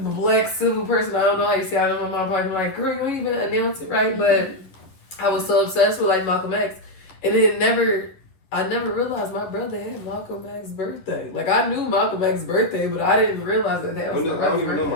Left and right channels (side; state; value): right; late; 11 ms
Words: civil person. I don't know how you say it. I don't know, my probably like, girl, you don't even announce it right, but I was so obsessed with like Malcolm X, and I never realized my brother had Malcolm X's birthday. Like, I knew Malcolm X's birthday, but I didn't realize that was my brother's birthday. I don't even know